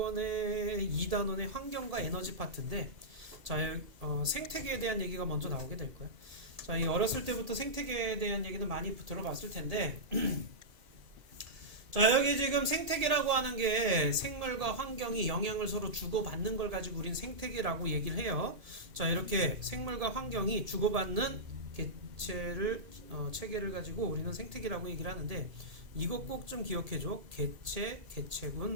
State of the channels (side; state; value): left; late; 1.8 ms